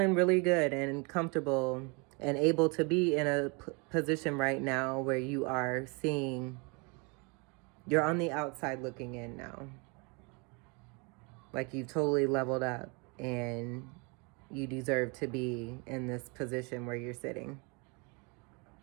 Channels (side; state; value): left; quieter; 31.2 dB